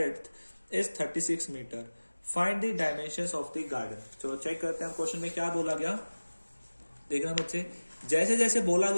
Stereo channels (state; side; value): inverted; both; correlation -1.00